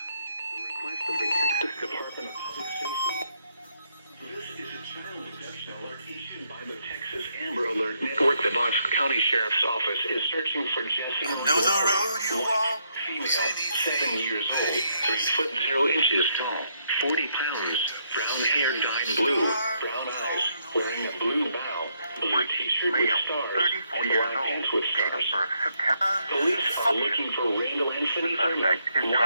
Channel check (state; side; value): inverted; both; correlation -0.75